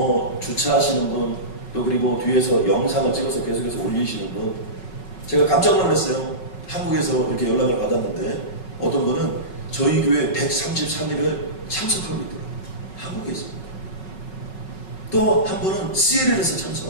주차하시는 분, 또 그리고 뒤에서 영상을 찍어서 계속해서 올리시는 분, 제가 깜짝 놀랐어요. 한국에서 이렇게 연락을 받았는데 어떤 분은 저희 교회 133일을 참석하고 있더라고요. 한국에서. 또 한 분은 CLL에서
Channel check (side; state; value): right; late; 5.4 ms